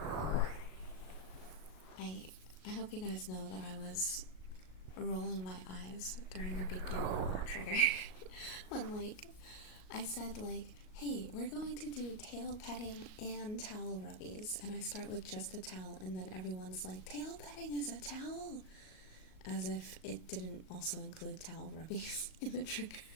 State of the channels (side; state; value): right; late; 38 ms